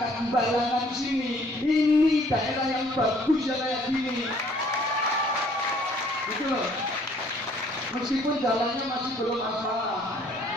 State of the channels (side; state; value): both; normal; correlation 0.60